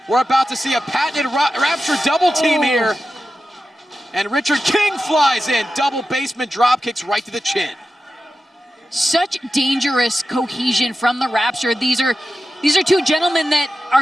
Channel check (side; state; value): both; normal; correlation 0.92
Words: We're about to see a patented Rapture double team here. And Richard King flies in. Double basement drop kicks right to the chin. Such dangerous cohesion from the Rapture. These are two gentlemen that